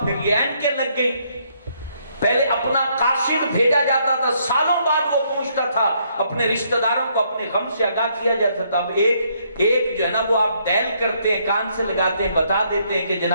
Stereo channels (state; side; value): inverted; both; correlation -0.70